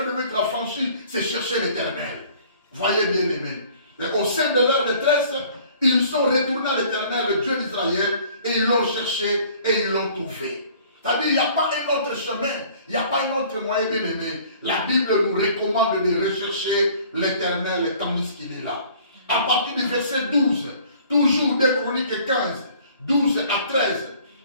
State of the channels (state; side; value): inverted; both; correlation -0.53